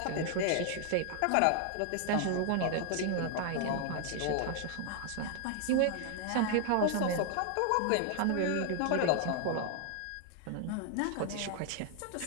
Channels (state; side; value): different; both; correlation 0.00